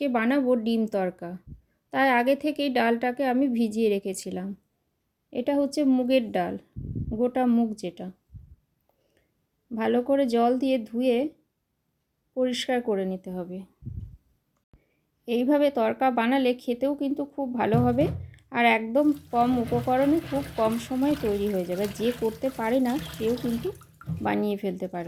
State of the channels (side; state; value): both; identical; correlation 1.00